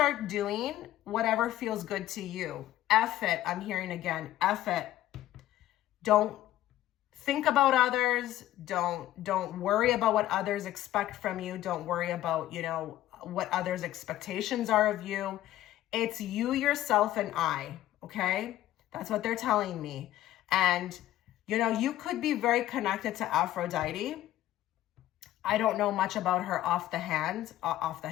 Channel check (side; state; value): right; quieter; 14.0 dB